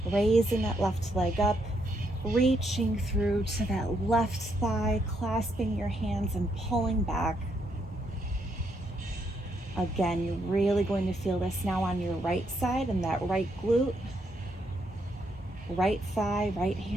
raising that left leg up, reaching through to that left thigh, clasping your hands and pulling back. Again, you're really going to feel this now on your right side and that right glute, right thigh, right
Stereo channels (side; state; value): both; normal; correlation 0.76